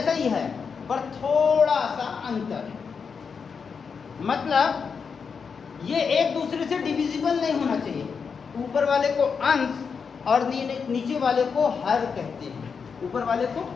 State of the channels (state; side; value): quieter; right; 5.9 dB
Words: ही है पर थोड़ा सा अंतर है। मतलब ये एक दूसरे से डिविजिबल नहीं होना चाहिए। ऊपर वाले को अंश और नीचे वाले को हर कहते हैं। ऊपर वाले को